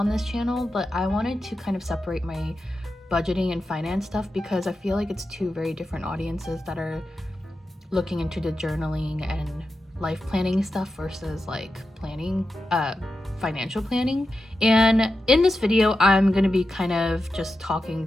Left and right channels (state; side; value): normal; both; correlation 0.90